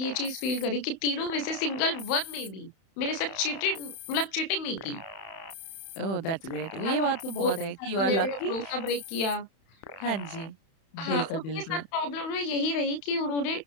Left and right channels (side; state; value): right; late; 31 ms